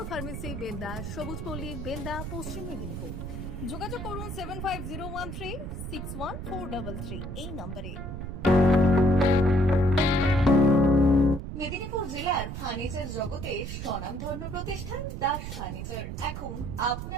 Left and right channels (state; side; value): noise; right; rumble, 7 dB below the sound